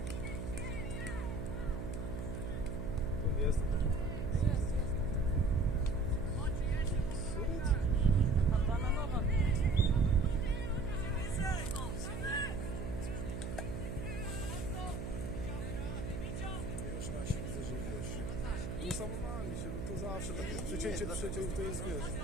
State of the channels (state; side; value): noise; right; hum, 5 dB below the sound